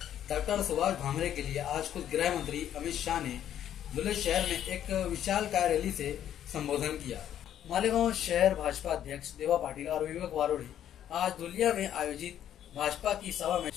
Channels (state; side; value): quieter; right; 10.6 dB